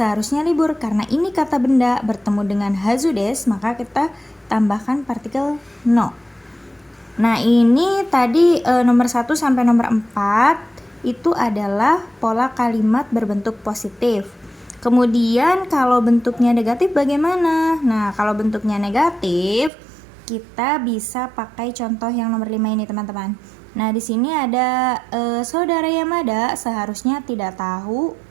libur. Karena ini kata benda bertemu dengan hazu desu, maka kita tambahkan partikel no. Nah, ini tadi nomor 1 sampai nomor 4 itu adalah pola kalimat berbentuk positif. Kemudian kalau bentuknya negatif bagaimana? Nah, kalau bentuknya negatif kita bisa pakai contoh yang nomor 5 ini teman-teman. Nah, di sini ada saudara Yamada seharusnya tidak tahu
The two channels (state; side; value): drops out; left; at 19.7 s